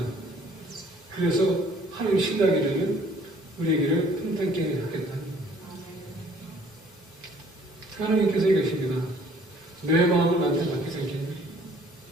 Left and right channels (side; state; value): both; normal; correlation 0.58